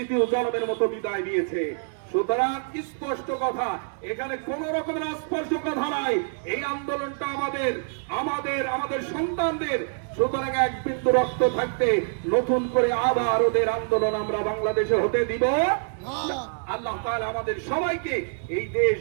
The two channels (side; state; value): left; silent; digital silence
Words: জনমের মতো বিদায় নিয়েছে। সুতরাং স্পষ্ট কথা, এখানে কোন রকমের স্পষ্ট কথা নাই। এই আন্দোলনটা আমাদের সন্তানদের। সুতরাং এক বিন্দু রক্ত থাকতে নতুন করে আবার ওদের আন্দোলন আমরা বাংলাদেশে হতে দিব না। আল্লাহ তাআলা আমাদের সবাইকে এই দেশ